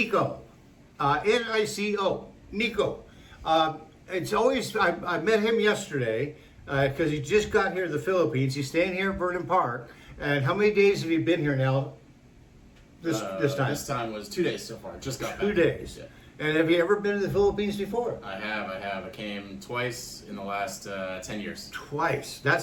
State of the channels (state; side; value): identical; both; correlation 1.00